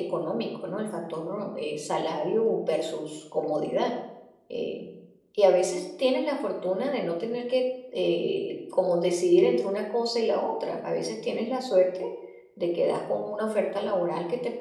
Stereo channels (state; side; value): identical; both; correlation 1.00